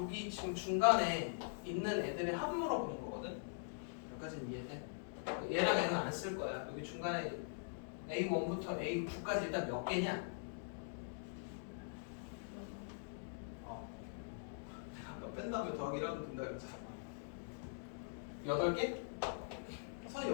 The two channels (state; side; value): silent; right; digital silence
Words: 지금 중간에 있는 애들의 합 물어보는 거거든. 여기까지는 이해돼? 얘랑 얘는 안 쓸 거야. 여기 중간에 A1부터 A9까지 일단 몇 개냐? 내가 아까 뺀 다음에 더하기 1하면 된다 그랬잖아. 8개? 선이